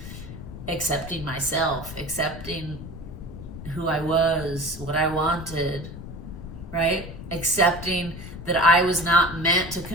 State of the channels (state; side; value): noise; left; rumble, 11 dB below the sound